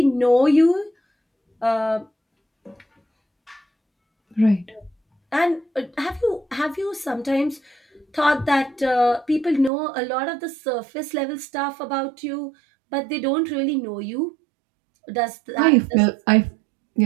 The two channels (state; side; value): drops out; left; at 9.7 s